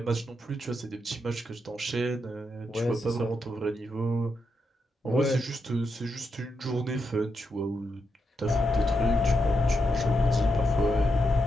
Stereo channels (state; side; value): normal; both; correlation 0.84